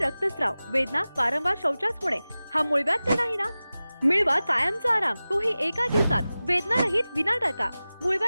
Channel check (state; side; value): inverted; both; correlation -0.97